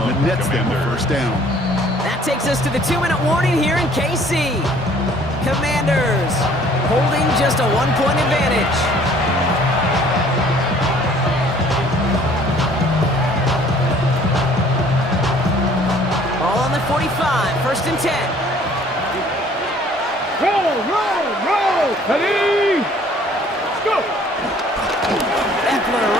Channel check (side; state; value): both; normal; correlation 0.56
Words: that nets them a first down. That takes us to the 2-minute warning here in KC. Commanders holding just a 1-point advantage. Ball on the 45, first and 10. Roll. Ready? Go. Eckler